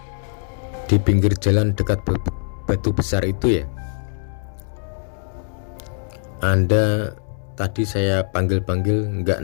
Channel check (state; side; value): silent; right; 64 dB below the other